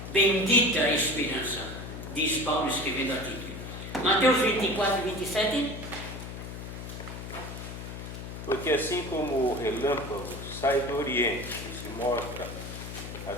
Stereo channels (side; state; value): left; noise; hum, 9 dB below the sound